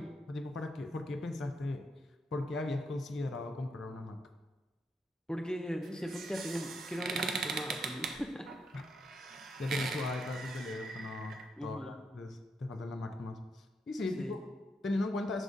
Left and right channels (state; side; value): normal; both; correlation 0.79